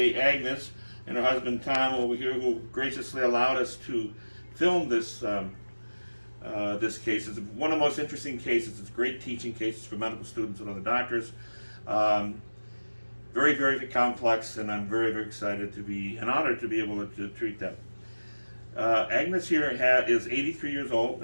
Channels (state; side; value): inverted; both; correlation -1.00